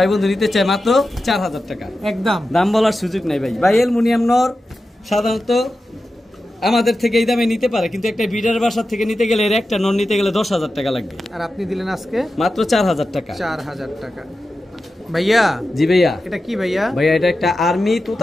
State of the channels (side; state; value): both; normal; correlation 0.92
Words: বন্ধু নিতে চায় মাত্র 4000 টাকা একদম। দাম বলার সুযোগ নাই ভাই। ভাই অ্যালুমিনিয়াম নর সাধারণত আমাদের থেকে এই দামে নিতে পারে, কিন্তু একটা বিডার বাসার থেকে নিতে গেলে এর একটা নর নিতে গেলে 10,000 টাকা লাগবে। আর আপনি দিলেন আজকে মাত্র 4000 টাকা। 4000 টাকা ভাইয়া? জি ভাইয়া। এটা কি ভাইয়া? ভাইয়া এটা একটা আর্মি